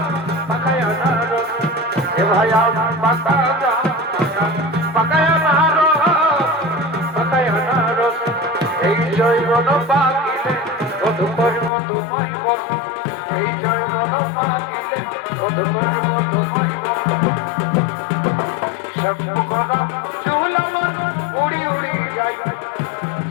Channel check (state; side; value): drops out; right; at 11.7 s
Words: এ ভাই আম পাকা গাছ পাকা পাকায় আনারস এই জৈবন পাকিলে কত করব তোমায় বল এই জৈবন পাকিলে কত করব তোমায় বল সব করা চুল আমার উড়ি উড়ি যাই